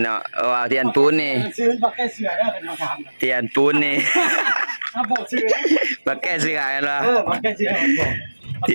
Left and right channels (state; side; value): inverted; both; correlation -1.00